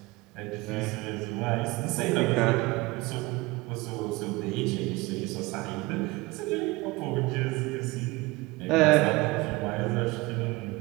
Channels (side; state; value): left; quieter; 22.5 dB